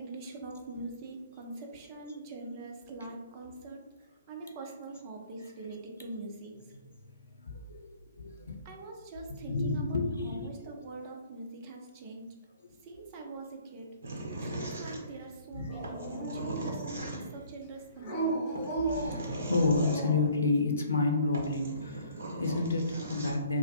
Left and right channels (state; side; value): inverted; both; correlation -0.56